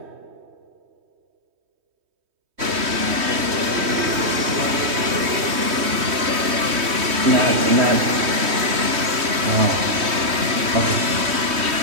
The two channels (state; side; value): late; left; 3.1 ms